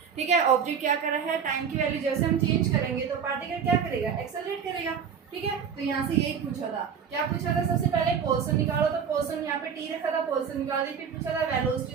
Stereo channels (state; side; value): quieter; left; 7.2 dB